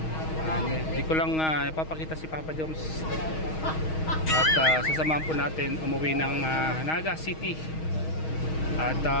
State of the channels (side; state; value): right; late; 6.3 ms